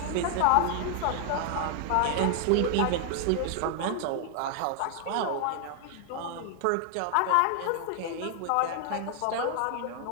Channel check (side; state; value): both; different; correlation 0.00